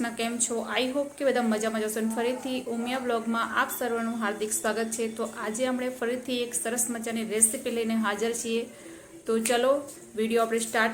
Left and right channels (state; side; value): identical; both; correlation 1.00